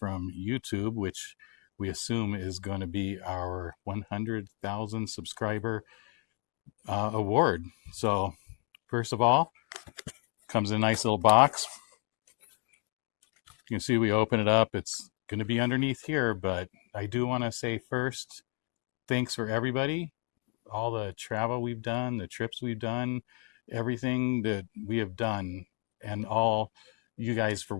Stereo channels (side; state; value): right; quieter; 37.6 dB